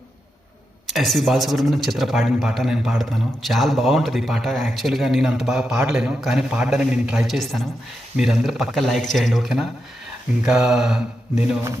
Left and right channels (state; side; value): normal; both; correlation 0.86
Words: SV Balasubrahmanyam చిత్ర పాడిన పాట నేను పాడుతాను. చాలా బాగుంటుంది ఈ పాట. యాక్చువల్గా నేను అంత బాగా పాడలేను, కానీ పాడడానికి నేను ట్రై చేస్తాను. మీరందరూ పక్క లైక్ చేయండి, ఓకేనా? ఇంకా నేను